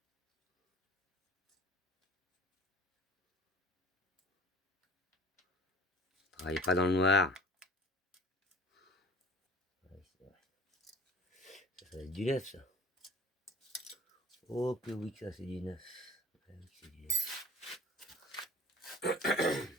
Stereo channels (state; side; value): normal; both; correlation 0.45